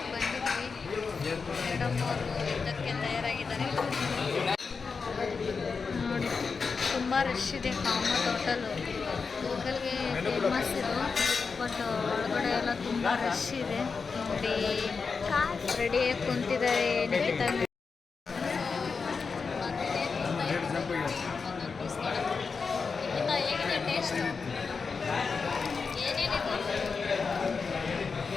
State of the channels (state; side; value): quieter; right; 5.0 dB